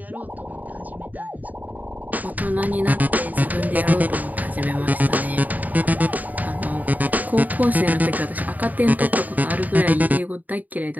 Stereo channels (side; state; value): left; late; 0.080 ms